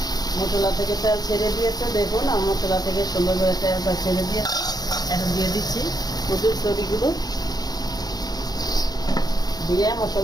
মশলা থেকে তেল ছেড়ে দিয়েছে, দেখুন আমার মশলা থেকে সুন্দর করে তেলটা ছেড়ে দিয়েছে। এখন দিয়ে দিচ্ছি কচুর ছড়িগুলো, দিয়ে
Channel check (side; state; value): right; late; 0.19 ms